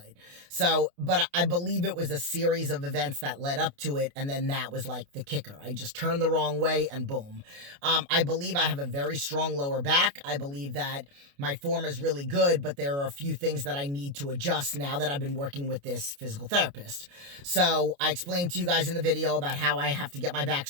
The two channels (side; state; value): left; late; 29 ms